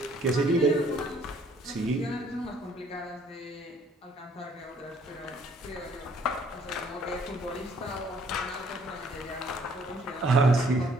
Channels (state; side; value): normal; both; correlation 0.62